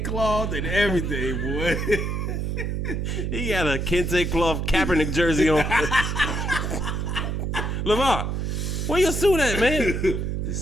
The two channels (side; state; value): right; noise; hum, 1 dB below the sound